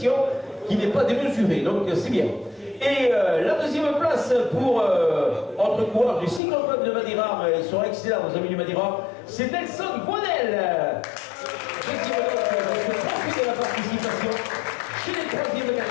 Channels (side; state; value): right; drops out; at 6.4 s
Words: qui n'est pas démesurée, donc c'est bien. Et la 2e place pour notre coureur du cycloclub de Madiran, ils sont excellents nos amis du Madiran, c'est Nelson Boinel. Profitez de la participation chez les 3e